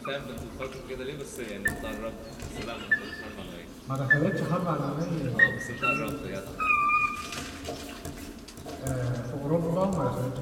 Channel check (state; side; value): identical; both; correlation 1.00